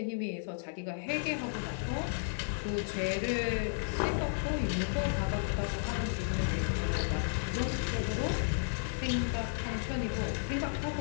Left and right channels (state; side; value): silent; right; digital silence